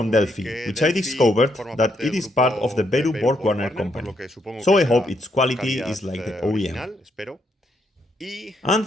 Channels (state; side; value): normal; both; correlation 0.76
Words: Delphi, which I discovered that it is part of the Werner company. So I hope its quality is like the OEM. And